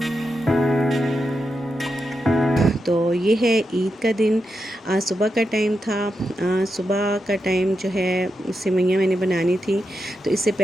तो ये है ईद का दिन। सुबह का टाइम था। सुबह का टाइम जो है सेवइयाँ मैंने बनानी थी। तो इससे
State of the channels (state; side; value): normal; both; correlation 0.87